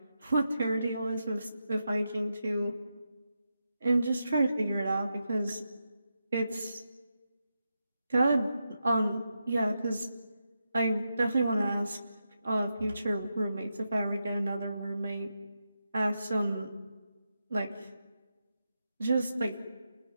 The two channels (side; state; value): both; inverted; correlation -0.87